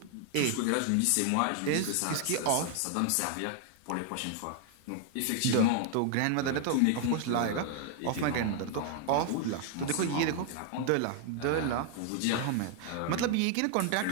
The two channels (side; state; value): both; different; correlation 0.00